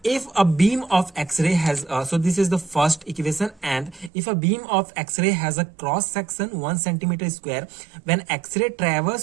If a beam of X-ray has so this is the first equation, and if a beam of X-ray has a cross section 1 centimeter square, when X-ray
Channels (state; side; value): drops out; left; at 4.1 s